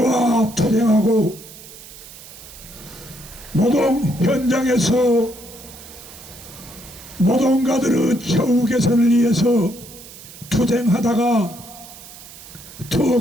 투쟁하고 노동 현장에서 노동가들의 처우 개선을 위해서 투쟁하다가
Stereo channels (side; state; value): right; noise; hiss, 17 dB below the sound